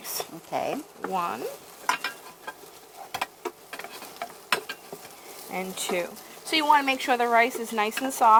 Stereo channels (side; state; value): both; identical; correlation 1.00